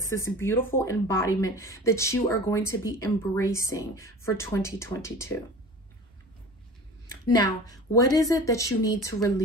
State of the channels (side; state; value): both; normal; correlation 0.39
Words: this beautiful embodiment that you are going to be embracing for 2022. Now, what is it that you need to